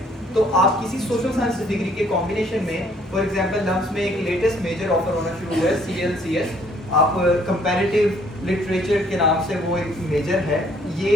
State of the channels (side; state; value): both; normal; correlation 0.63